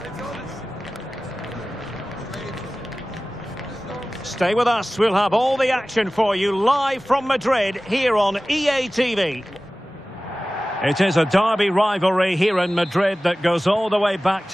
Stay with us. We'll have all the action for you live from Madrid here on EA TV. It is a derby rivalry here in Madrid that goes all the way back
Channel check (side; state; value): both; normal; correlation 0.97